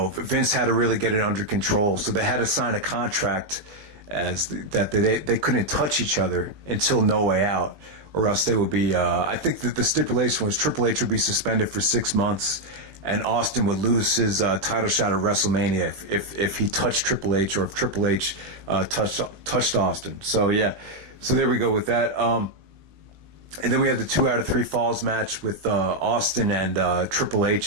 had to really get it under control. So they had to sign a contract that they couldn't touch each other until No Way Out. Or else they would be, I think that the stipulation was Triple H would be suspended for 6 months, and Austin would lose his title shot at WrestleMania if he touched Triple H, or if Triple H touched Austin. So yeah, so there we go with that. And then we have the 2 out of 3 falls match with Austin and Triple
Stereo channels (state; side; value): late; left; 20 ms